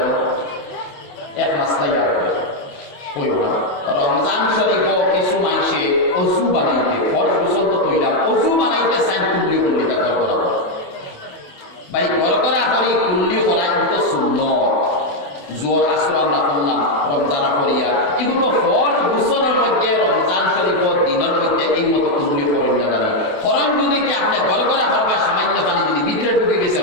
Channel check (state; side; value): late; right; 28 ms